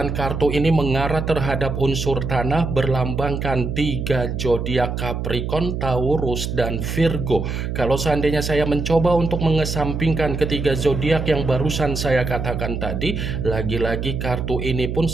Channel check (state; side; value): noise; right; hum, 3 dB below the sound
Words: kartu ini mengarah terhadap unsur tanah, berlambangkan 3 zodiak Capricorn, Taurus, dan Virgo. Kalau seandainya saya mencoba untuk mengesampingkan ketiga zodiak yang barusan saya katakan tadi, lagi-lagi kartu ini pun